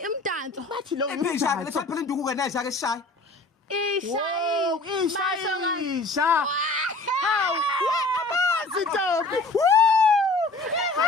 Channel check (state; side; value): quieter; right; 3.1 dB